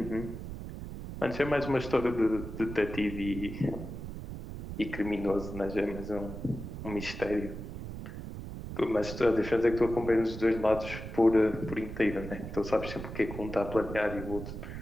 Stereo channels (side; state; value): right; noise; rumble, 9 dB below the sound